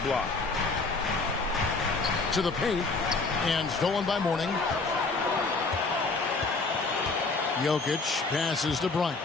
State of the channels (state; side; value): quieter; right; 3.9 dB